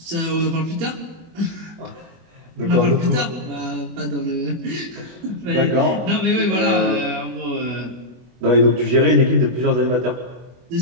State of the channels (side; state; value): left; late; 24 ms